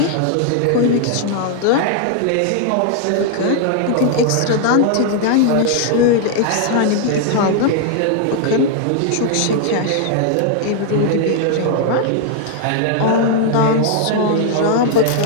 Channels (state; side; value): different; both; correlation 0.00